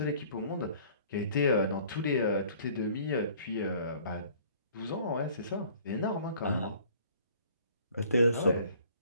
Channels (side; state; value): both; inverted; correlation -0.53